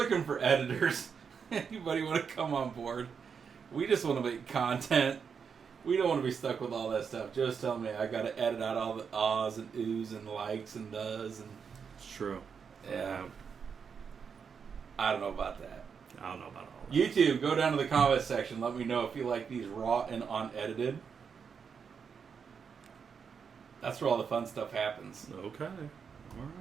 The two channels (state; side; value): quieter; left; 6.4 dB